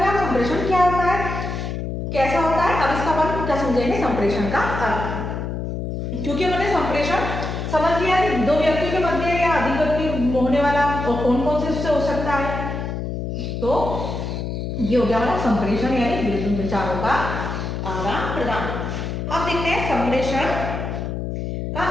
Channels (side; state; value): left; noise; hum, 4 dB below the sound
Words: संप्रेषण क्या होता है, कैसा होता है। अब इसका अपन क्या समझेंगे, संप्रेषण का अर्थ। क्योंकि मैंने संप्रेषण समझ लिया कि दो व्यक्तियों के मध्य या अधिक व्यक्ति होने वाला और कौन कौन से उससे हो सकता है, तो ये हो गया हमारा संप्रेषण यानी विचारों का आदान प्रदान। अब देखते हैं संप्रेषण का